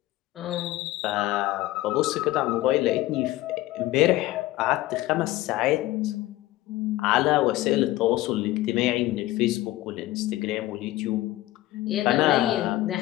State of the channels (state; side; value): quieter; right; 16.7 dB